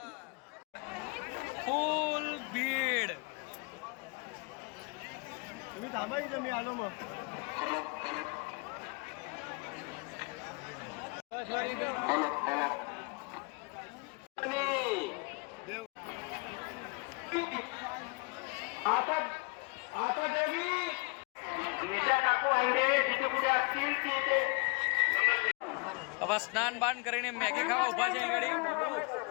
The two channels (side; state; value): right; quieter; 30.9 dB